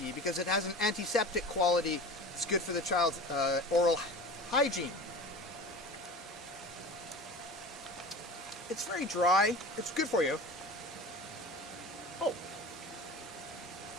because it has an antiseptic quality. It's good for the child's oral hygiene. It's very dry. It's good for you. Oh.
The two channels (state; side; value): normal; both; correlation 0.35